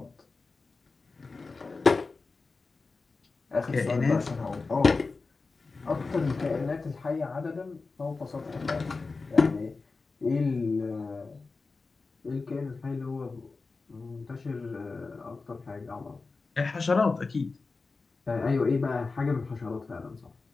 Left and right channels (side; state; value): right; quieter; 4.0 dB